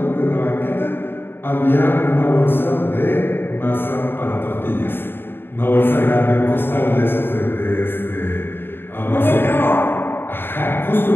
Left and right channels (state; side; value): late; right; 0.10 ms